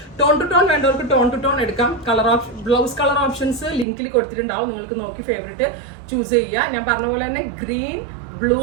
ടോൺ ടു ടോൺ വേണ്ടവർക്ക് ടോൺ ടു ടോൺ എടുക്കാം. ബ്ലൗസ് കളർ ഓപ്ഷൻസ് ലിങ്കിൽ കൊടുത്തിട്ടുണ്ടാവും, നിങ്ങൾക്ക് നോക്കി ഫേവറേറ്റ് ചൂസ് ചെയ്യുക. ഞാൻ പറഞ്ഞ പോലെ തന്നെ green, blue,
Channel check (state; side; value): drops out; left; at 3.9 s